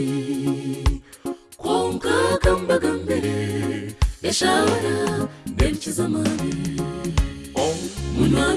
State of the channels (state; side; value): identical; both; correlation 1.00